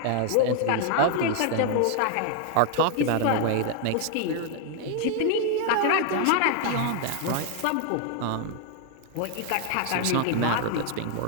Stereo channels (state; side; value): different; both; correlation 0.00